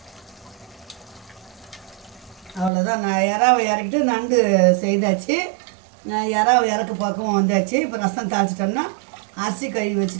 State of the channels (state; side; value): drops out; left; at 2.7 s